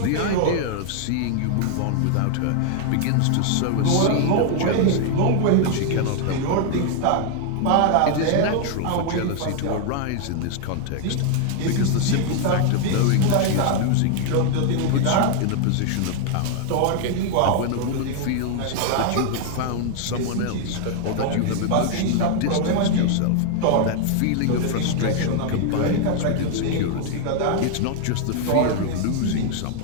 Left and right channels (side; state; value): both; different; correlation 0.00